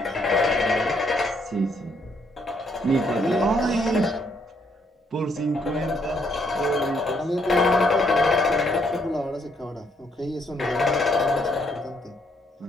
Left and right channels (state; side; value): normal; both; correlation 0.71